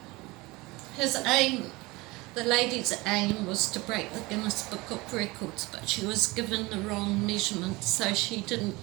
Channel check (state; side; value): quieter; left; 22.7 dB